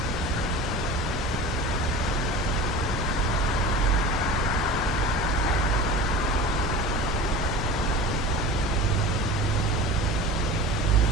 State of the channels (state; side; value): normal; both; correlation 0.35